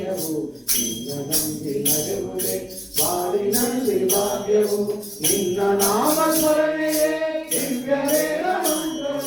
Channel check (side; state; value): both; identical; correlation 1.00